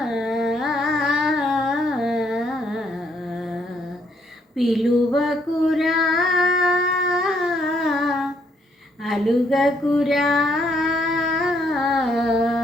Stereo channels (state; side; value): normal; both; correlation 0.71